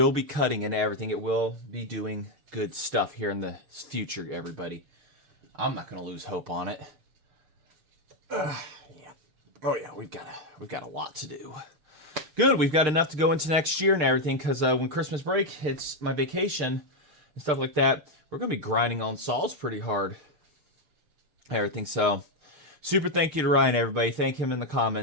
be cutting and everything. It will be doing good stuff here in the future, everybody. I'm not going to lose hope on it. Yeah. Oh yeah, we've got a lot to do. Good, we've got enough to go into next year and everything, because when Christmas break hits my vacation and stuff like that, we're going to be grinding on saws pretty hard. Everything. So super thank you to Ryan, everybody. Thank him in the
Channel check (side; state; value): left; late; 6.6 ms